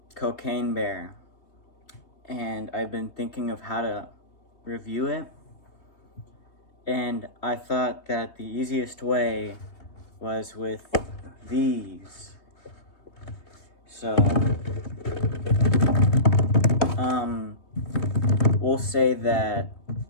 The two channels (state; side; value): late; right; 3.2 ms